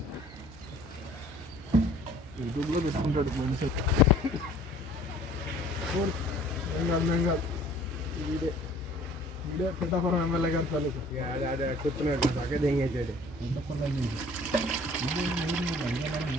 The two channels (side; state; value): both; normal; correlation 0.52